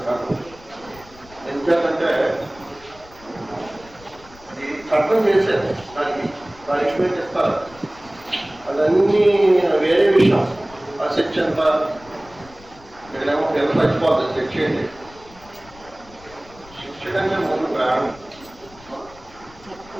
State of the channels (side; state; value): left; noise; rumble, 23 dB below the sound